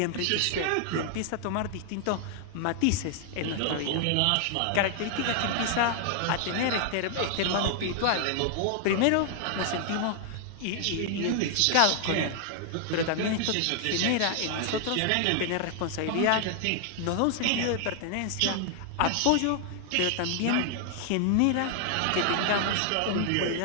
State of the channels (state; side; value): different; both; correlation 0.00